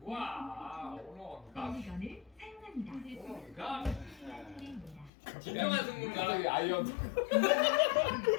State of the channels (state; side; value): drops out; right; at 5.1 s